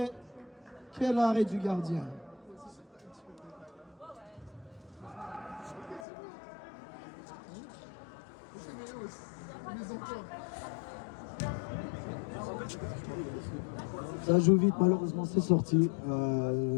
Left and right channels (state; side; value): drops out; right; at 6.1 s